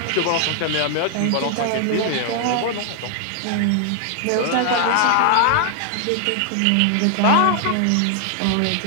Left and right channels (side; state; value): both; different; correlation 0.00